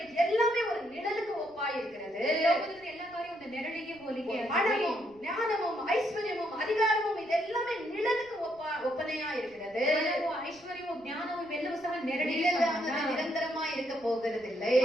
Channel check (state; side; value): noise; right; rumble, 29 dB below the sound